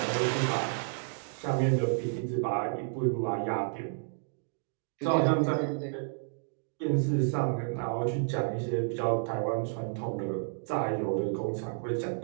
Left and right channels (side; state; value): left; silent; digital silence